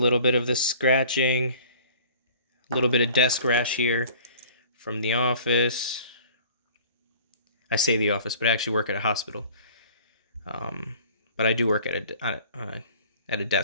bit of the scratching, a little bit of desk rash here from the office. I say the office, but I actually work at a hospital. But I do work at a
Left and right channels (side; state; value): both; inverted; correlation -0.49